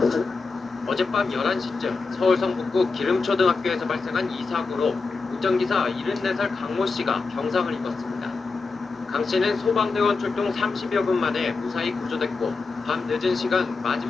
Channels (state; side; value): quieter; right; 4.3 dB